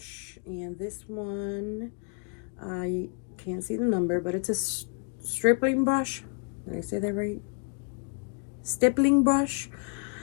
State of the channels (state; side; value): quieter; right; 39.4 dB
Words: and this one, I can't see the number, but it's a stripling brush. Did I say that right? Stippling brush,